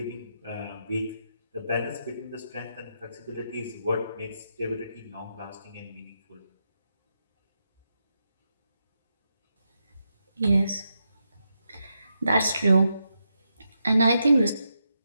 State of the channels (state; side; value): inverted; both; correlation -0.84